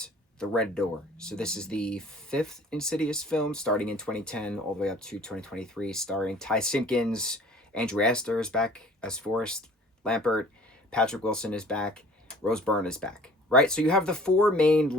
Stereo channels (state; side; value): normal; both; correlation 0.49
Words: The Red Door. So this is the fifth Insidious film, starting in 2010 all the way up to 2023, starring Ty Simpkins. Andrew Astor is back as Forrest Lampert. Patrick Wilson is back. Rose Byrne is back. Right? So you have the four main